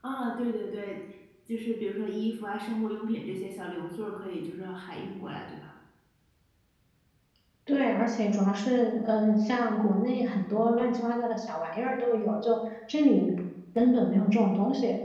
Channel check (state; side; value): identical; both; correlation 1.00